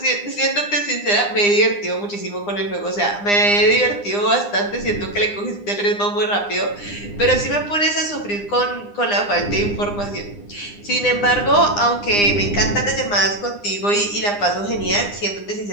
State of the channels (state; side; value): late; right; 9.8 ms